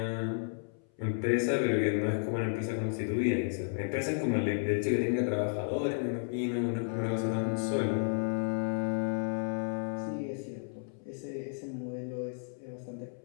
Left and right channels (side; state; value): right; silent; 56 dB below the other